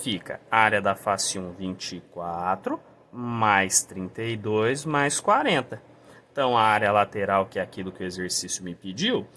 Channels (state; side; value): identical; both; correlation 1.00